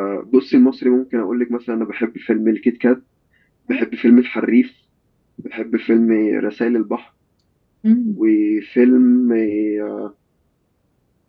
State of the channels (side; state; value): both; identical; correlation 1.00